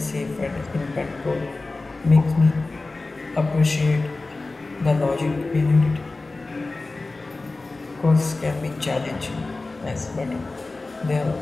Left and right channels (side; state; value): right; quieter; 3.4 dB